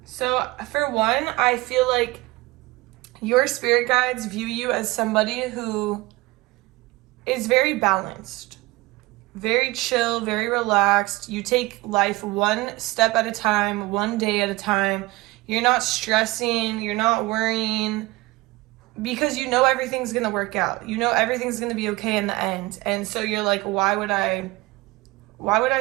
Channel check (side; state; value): left; quieter; 20.9 dB